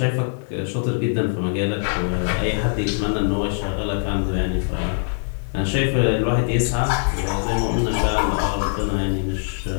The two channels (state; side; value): silent; right; 64 dB below the other